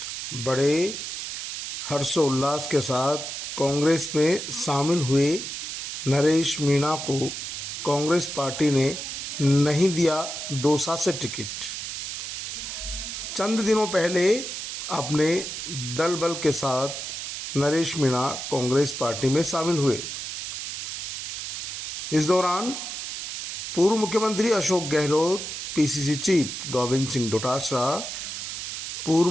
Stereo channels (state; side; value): noise; right; hiss, 6 dB below the sound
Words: बड़े हर्षोल्लास के साथ कांग्रेस में शामिल हुए नरेश मीणा को कांग्रेस पार्टी ने नहीं दिया दौसा से टिकट। चंद दिनों पहले अपने दल बल के साथ नरेश मीणा कांग्रेस पार्टी में शामिल हुए। इस दौरान पूर्व मुख्यमंत्री अशोक गहलोत, पीसीसी चीफ गोविंद सिंह डोटासरा, पूर्व